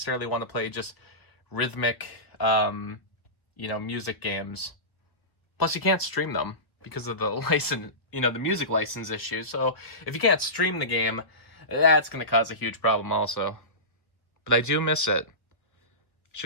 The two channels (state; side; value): late; right; 1.3 ms